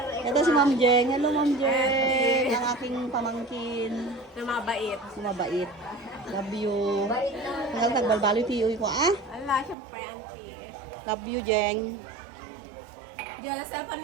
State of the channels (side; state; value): left; drops out; at 9.8 s